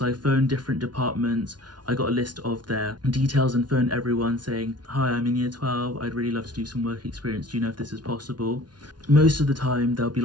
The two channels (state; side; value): late; left; 0.70 ms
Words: I phoned different departments, I got a list of their details and phoned everyone saying, hi, I'm in year 12, I'd really love to do some work experience, do you know if this is possible? Most of the time they'll be